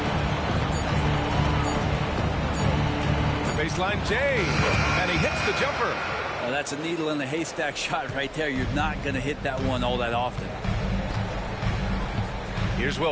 The baseline Jay. And he hits the jumper. That's a needle in the haystack shot right there. You're not going to hit that one all that often. Here's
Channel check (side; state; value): both; identical; correlation 1.00